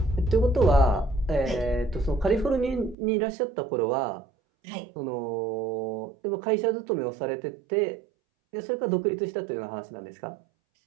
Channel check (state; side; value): drops out; left; at 3.0 s